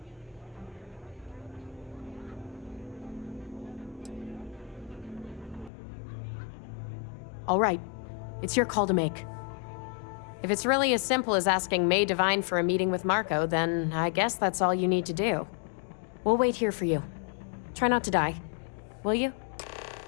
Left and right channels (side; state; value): right; drops out; at 5.7 s